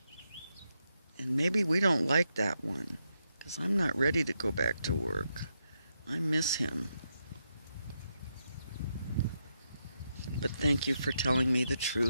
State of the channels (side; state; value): both; inverted; correlation -0.83